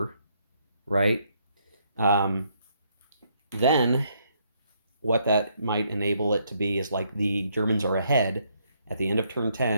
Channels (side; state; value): both; inverted; correlation -0.72